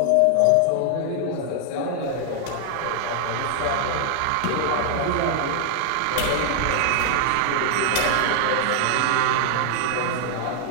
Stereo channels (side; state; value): both; different; correlation 0.00